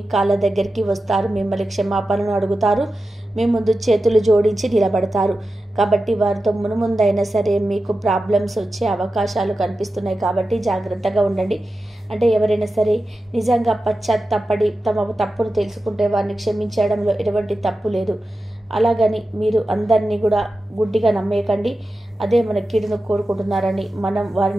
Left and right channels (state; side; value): normal; both; correlation 0.92